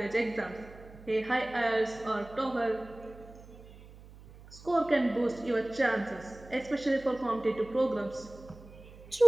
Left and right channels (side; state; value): right; noise; hum, 19 dB below the sound